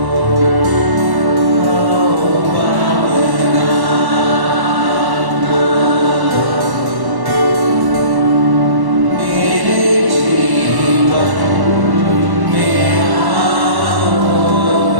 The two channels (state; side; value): late; left; 1.1 ms